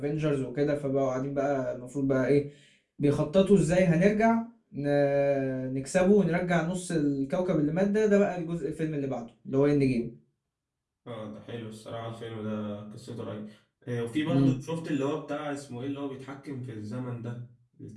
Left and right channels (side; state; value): both; identical; correlation 1.00